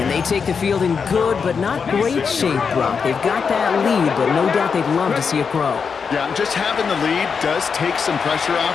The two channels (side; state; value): right; quieter; 5.9 dB